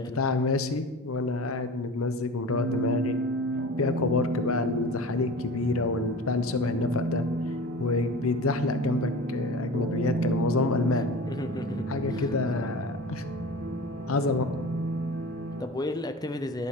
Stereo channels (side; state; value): both; normal; correlation 0.35